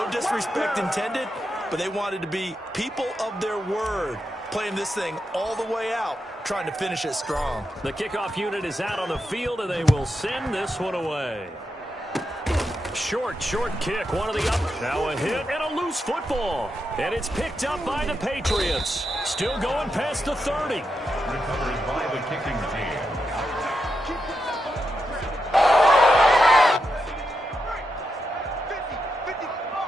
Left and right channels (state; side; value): normal; both; correlation 0.85